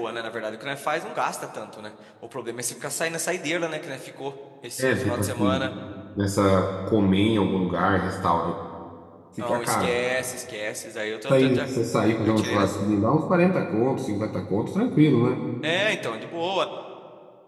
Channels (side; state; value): both; identical; correlation 1.00